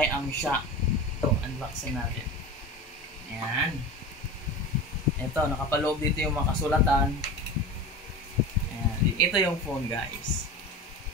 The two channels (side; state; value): both; normal; correlation 0.30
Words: Am Siya. Ito, unboxing natin. Ayan. Ito, nakapaloob dito yung mga kasulatan. Ayan. Ito yung phone guys.